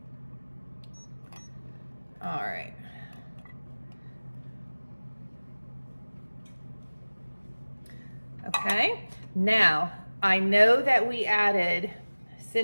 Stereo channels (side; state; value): both; inverted; correlation -1.00